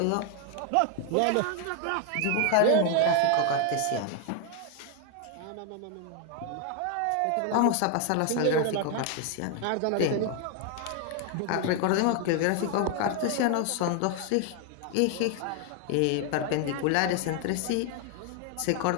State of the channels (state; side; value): different; both; correlation 0.01